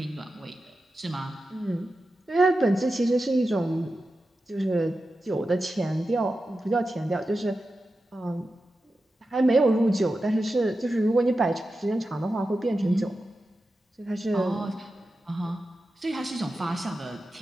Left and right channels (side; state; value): both; normal; correlation 0.91